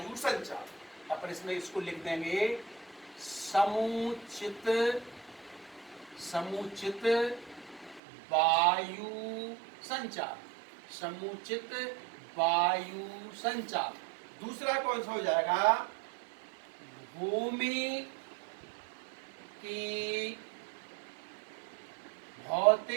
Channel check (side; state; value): left; drops out; at 8.0 s